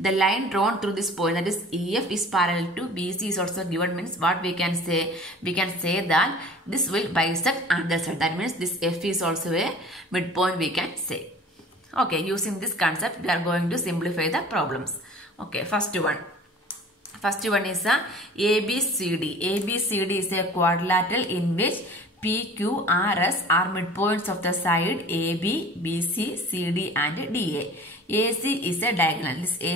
line drawn through this point, that is EF, is parallel to BC is also given. Means what we can say? We can say that this will bisect other side. That means this F is also a midpoint we can say. Okay, using this concept we are going to simplify the problems. Okay, first one is a ABCD. ABCD is a quadrilateral in which PQRS are midpoints of the side AB, BC, CD and DA. AC is a diagonal. This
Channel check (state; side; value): normal; both; correlation 0.45